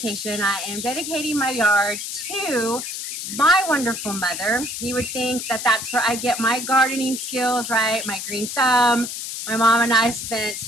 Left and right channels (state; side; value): noise; left; hiss, 6 dB below the sound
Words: I am dedicating my yard to my wonderful mother. You would think that that's where I get my gardening skills, right? My green thumb. My mom and I spent